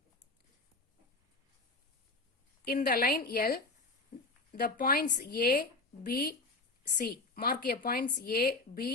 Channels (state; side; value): quieter; right; 3.3 dB